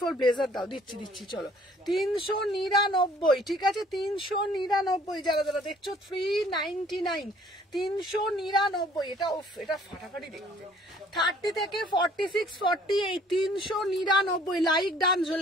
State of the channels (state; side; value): normal; both; correlation 0.57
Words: ব্লেজার দাও, দিচ্ছি। চলো 399, ঠিক আছে 399। যারা যারা দেখছো 399, 399, এটা এটা ফাটাফাটি দেখতে। 30 থেকে 46, 48, 399। লাইক ডান,